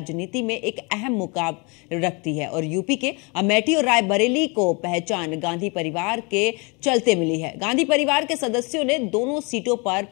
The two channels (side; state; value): right; quieter; 30.3 dB